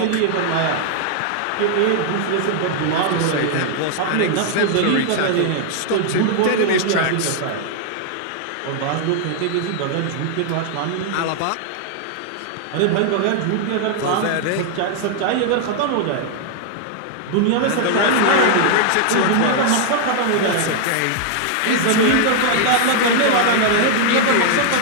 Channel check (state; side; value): different; both; correlation 0.00